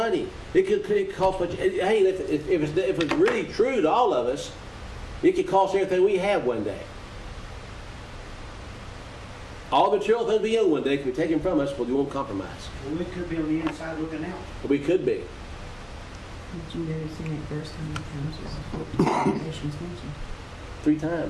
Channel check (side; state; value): both; identical; correlation 1.00